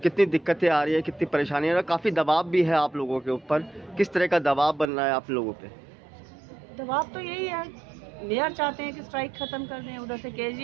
कितनी दिक्कतें आ रही है, कितनी परेशानी है, काफ़ी दबाव भी है आप लोगों के ऊपर, किस तरह का दबाव बन रहा है आप लोगों पे? दबाव तो यही है, मेयर चाहते हैं कि स्ट्राइक खत्म कर दें, उधर से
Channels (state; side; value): drops out; left; at 4.9 s